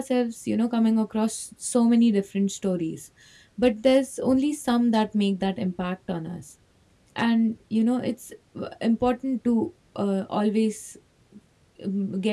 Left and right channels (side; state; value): both; identical; correlation 1.00